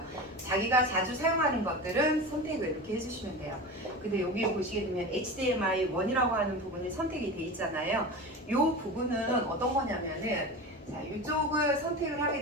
자기가 자주 사용하는 것들은 선택을 이렇게 해주시면 돼요. 근데 여기 보시게 되면 HDMI 1이라고 하는 부분이 선택이 돼 있잖아요. 이 부분은 어떤 거냐면은 자, 이쪽을 선택을 하게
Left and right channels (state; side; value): normal; both; correlation 0.28